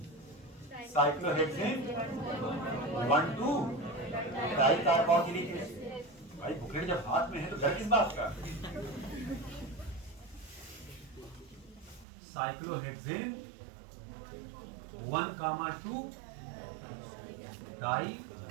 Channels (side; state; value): left; drops out; at 12.1 s